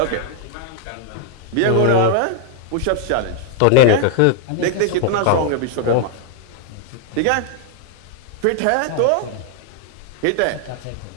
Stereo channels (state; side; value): different; both; correlation 0.00